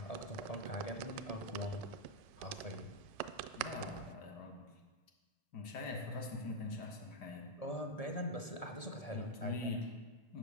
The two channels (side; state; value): right; late; 1.7 ms